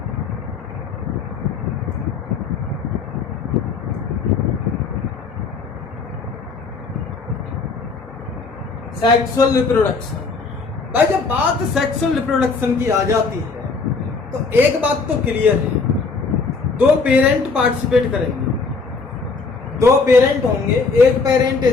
सेक्सुअल रिप्रोडक्शन, भाई जब बात सेक्सुअल रिप्रोडक्शन की आ जाती है तो एक बात तो क्लियर है, दो पेरेंट पार्टिसिपेट करेंगे, दो पेरेंट होंगे, एक पेरेंट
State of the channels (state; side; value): quieter; right; 4.5 dB